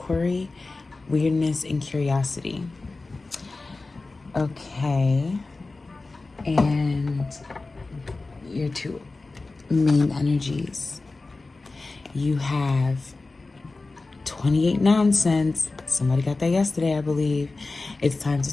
weirdness, and curiosity. Okay. And your two main energies. You have 28 nonsense. Somebody got that yesterday, I believe. It's time to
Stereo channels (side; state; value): right; quieter; 3.5 dB